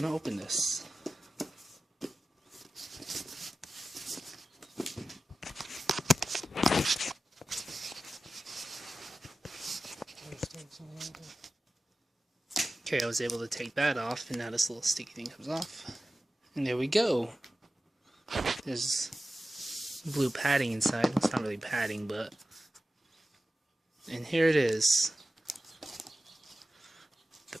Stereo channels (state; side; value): normal; both; correlation 0.93